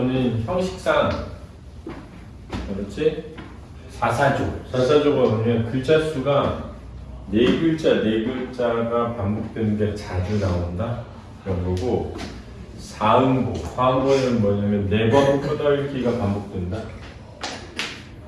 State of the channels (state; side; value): identical; both; correlation 1.00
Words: 형식상, 그렇지? 사사조가 뭐냐면 글자 수가 네 글자가 반복되는 게 자주 나온다 그런 거고, 사음보는 뭐냐면 네 번 끄덕이기가 반복된다.